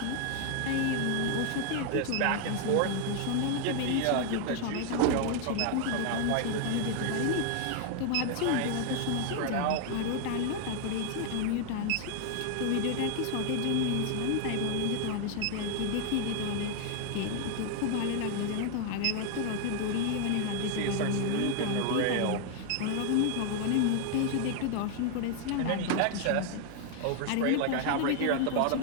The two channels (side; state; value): both; different; correlation 0.00